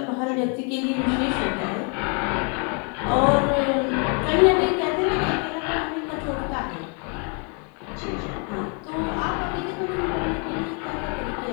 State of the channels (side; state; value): right; quieter; 37.5 dB